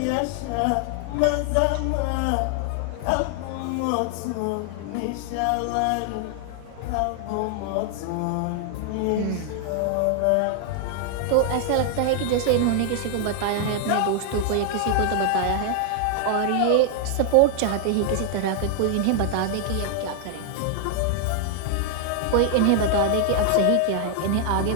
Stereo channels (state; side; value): different; both; correlation 0.00